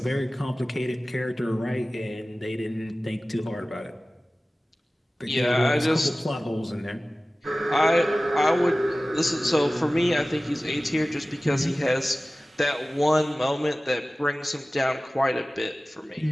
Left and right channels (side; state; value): both; normal; correlation 0.97